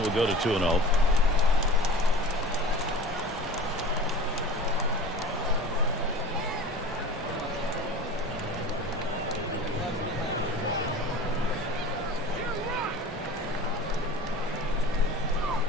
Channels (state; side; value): normal; both; correlation 0.39